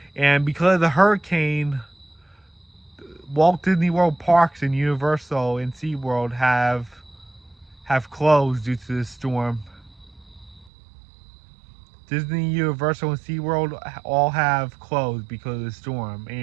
And because of the hurricane, Walt Disney World parks and Universal and SeaWorld have closed due to the storm. Disney, Universal, and SeaWorld all have closed because of the storm,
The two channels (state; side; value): drops out; left; at 10.7 s